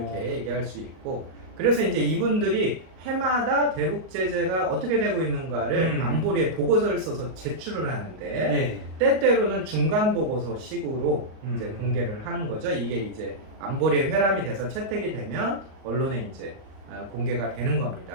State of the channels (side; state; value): left; late; 38 ms